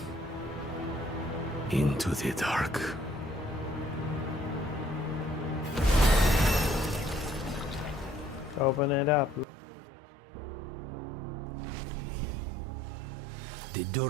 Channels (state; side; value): drops out; left; at 9.5 s